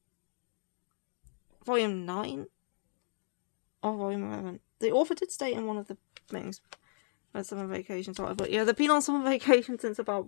Volume 9? Or Volume 11? The author did state in one of the things when summer vacation started, but yeah, they've been on summer vacation since about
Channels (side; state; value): right; silent; digital silence